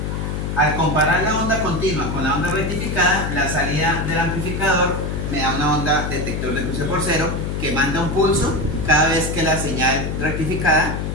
Al comparar la onda continua con la onda rectificada, la salida del amplificador me da una onda detector de cruce por cero que manda un pulso cada vez que la señal rectificada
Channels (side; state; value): left; noise; hum, 3 dB below the sound